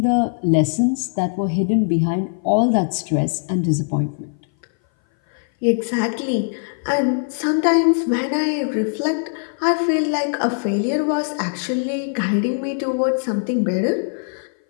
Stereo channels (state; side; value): silent; right; 58 dB below the other